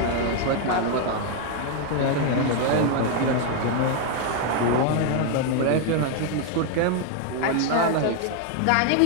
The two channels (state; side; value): different; both; correlation 0.00